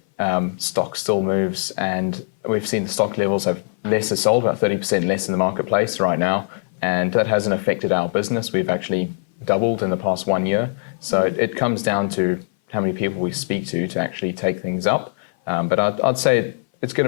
stock still moves, and we've seen the stock levels have less are sold, about 30% less in the marketplace right now. And that hasn't affected our business. We've actually doubled in the past 1 year. So it comes down to how many people we speak to actually take things up. But I'd say it's going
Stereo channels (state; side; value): silent; right; 58 dB below the other